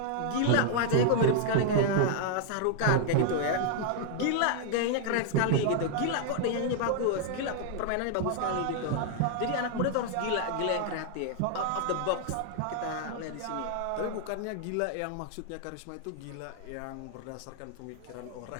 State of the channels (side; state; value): both; different; correlation 0.00